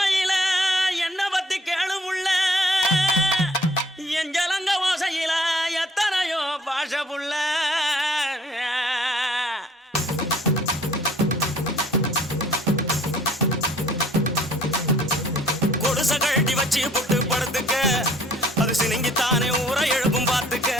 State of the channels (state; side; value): normal; both; correlation 0.57